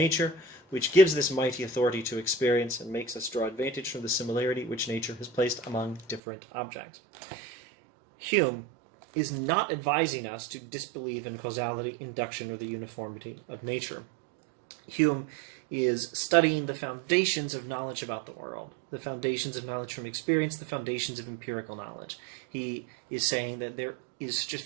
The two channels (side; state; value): left; drops out; at 6.2 s